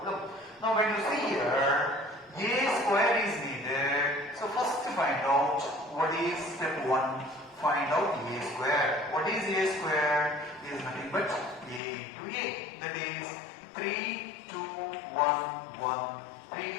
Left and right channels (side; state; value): right; drops out; at 11.8 s